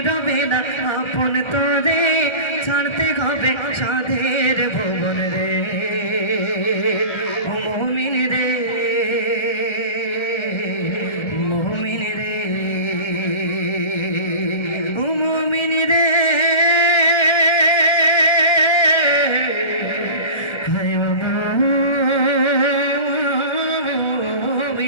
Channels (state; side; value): late; right; 1.3 ms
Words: রবে না আপন তোরে। ছাড়তে হবে সাধের ভুবন রে, ও মুমিন রে, মুমিন রে, ও মুমিন রে।